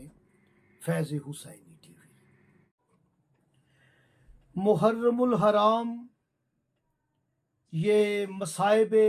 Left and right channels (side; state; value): both; identical; correlation 1.00